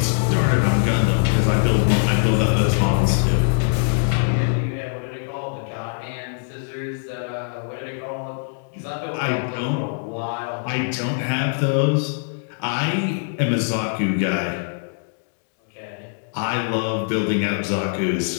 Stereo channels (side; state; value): right; silent; digital silence